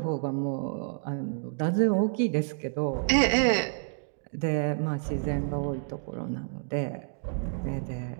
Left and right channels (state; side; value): silent; left; digital silence